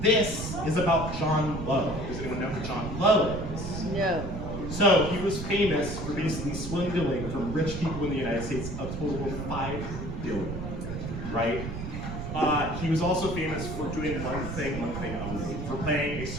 This is about John Lowe. Does anyone know who John Lowe is? No. So he was famous for basically swindling from rich people in the United States a total of $5 billion, right? He was also famous for doing one thing only, for playing a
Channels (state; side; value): noise; right; rumble, 6 dB below the sound